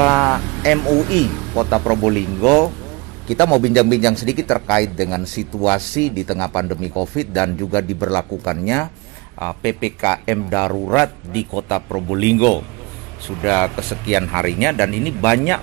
MUI Kota Probolinggo. Kita mau bincang-bincang sedikit terkait dengan situasi di tengah pandemi COVID dan juga diberlakukannya PPKM darurat di Kota Probolinggo. Sudah kesekian harinya dan ini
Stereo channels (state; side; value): quieter; left; 26.2 dB